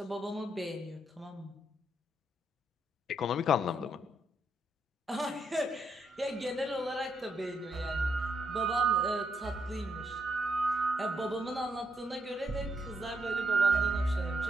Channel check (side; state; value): both; normal; correlation 0.77